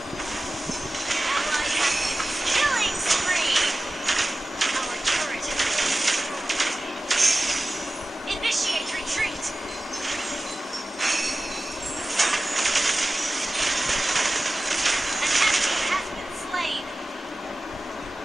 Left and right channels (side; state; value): both; normal; correlation 0.96